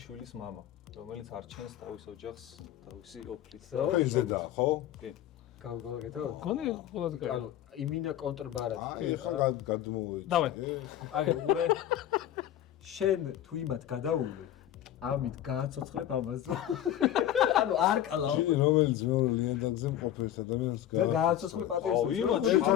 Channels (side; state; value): right; quieter; 11.7 dB